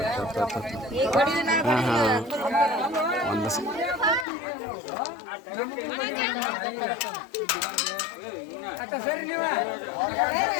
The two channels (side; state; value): right; drops out; at 4.2 s